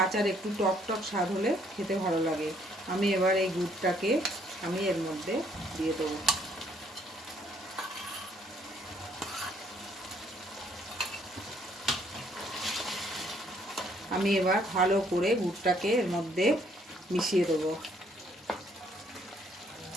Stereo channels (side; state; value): both; normal; correlation 0.66